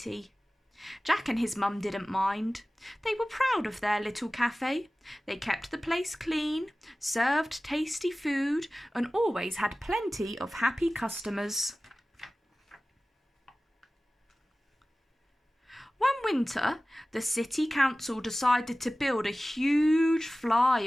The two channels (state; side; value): normal; both; correlation 0.97